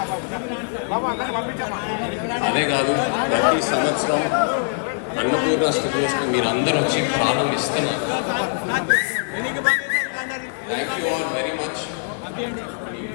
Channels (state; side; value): silent; right; digital silence